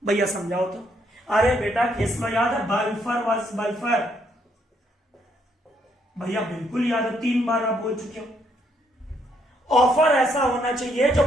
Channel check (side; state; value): both; normal; correlation 0.72